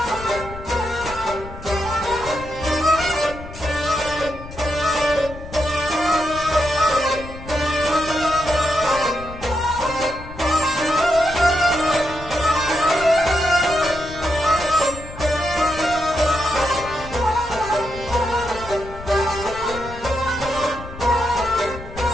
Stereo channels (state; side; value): noise; left; rumble, 13 dB below the sound